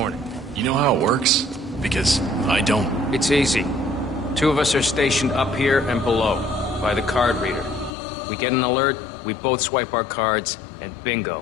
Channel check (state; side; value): drops out; right; at 8.0 s